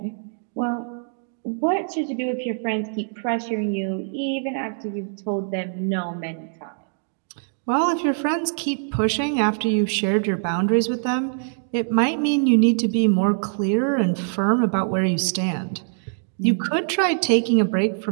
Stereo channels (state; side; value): silent; left; digital silence